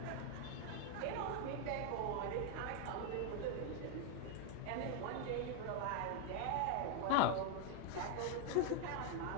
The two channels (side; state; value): both; different; correlation 0.01